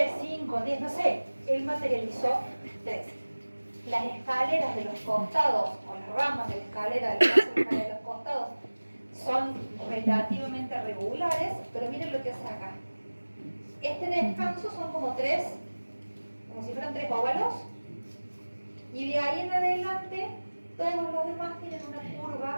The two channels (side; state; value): both; inverted; correlation -1.00